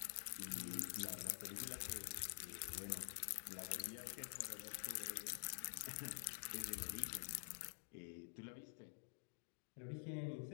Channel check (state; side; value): silent; right; digital silence